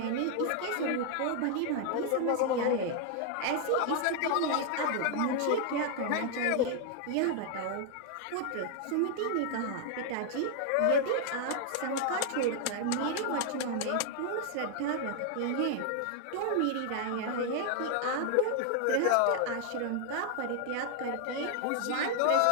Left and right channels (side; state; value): both; different; correlation 0.00